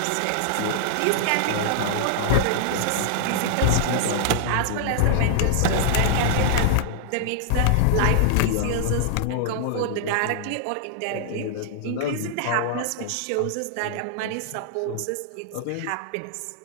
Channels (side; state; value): both; different; correlation -0.01